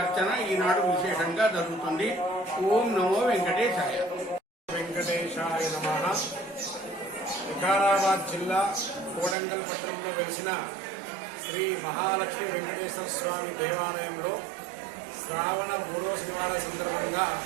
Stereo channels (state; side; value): drops out; left; at 9.3 s